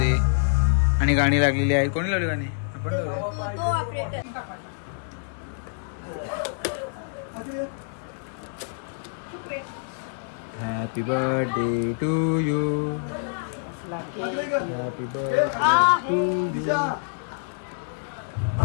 आणि गाणी लागलेली आहेत. कोणी लावली गाणी? आपण लावली. Happy birthday to you. Happy birthday to you.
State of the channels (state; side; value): silent; right; 61 dB below the other